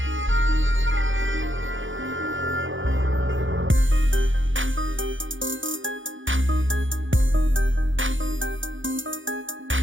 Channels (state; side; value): late; left; 0.57 ms